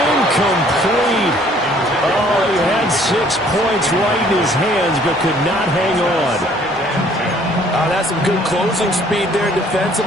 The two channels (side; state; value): both; normal; correlation 0.59